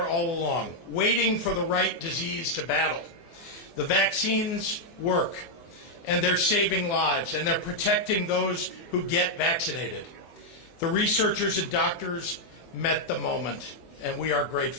all along, waiting for the right disease to battle. The vaccines work, and they're saving lives, and they're protecting those who get vaccinated. The researchers and doctors met the moment, and we are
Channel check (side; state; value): right; late; 24 ms